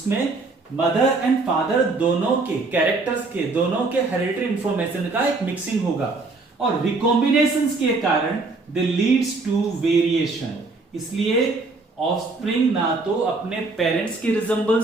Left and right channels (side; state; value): left; quieter; 3.6 dB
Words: मदर एंड फादर दोनों के कैरेक्टर्स के, दोनों के हेरिडिटरी इंफॉर्मेशन का एक मिक्सिंग होगा, और रिकॉम्बिनेशन के कारण दे लीड्स टू वेरिएशन। इसलिए ऑफस्प्रिंग ना तो अपने पेरेंट्स के